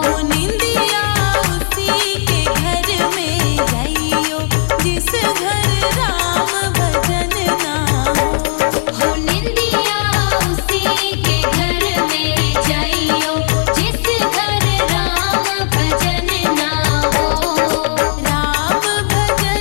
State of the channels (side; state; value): right; silent; digital silence